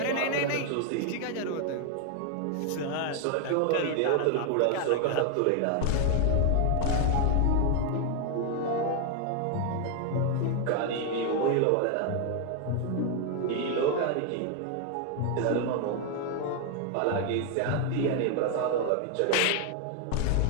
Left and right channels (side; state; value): both; different; correlation 0.00